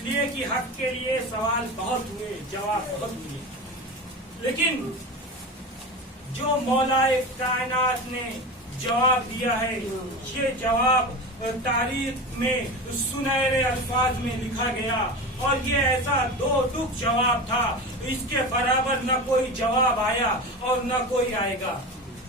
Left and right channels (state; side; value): normal; both; correlation 0.27